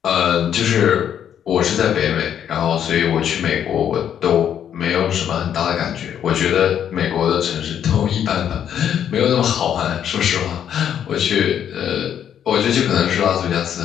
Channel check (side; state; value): right; quieter; 9.3 dB